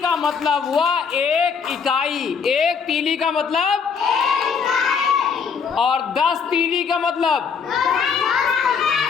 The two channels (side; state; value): right; quieter; 6.1 dB